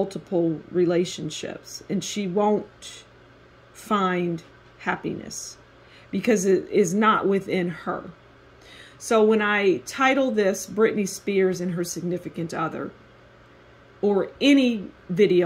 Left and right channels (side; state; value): both; identical; correlation 1.00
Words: relationships and she won't find happiness because it is not within her. So when I title this Britney Spears and her significant other, or any